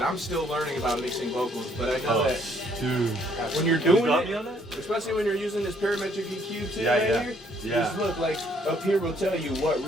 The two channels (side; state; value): both; normal; correlation 0.66